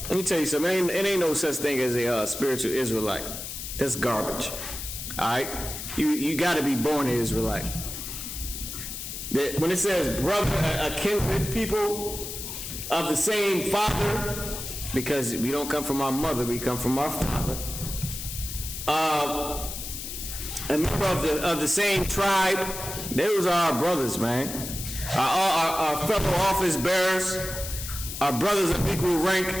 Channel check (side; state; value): left; noise; hiss, 7 dB below the sound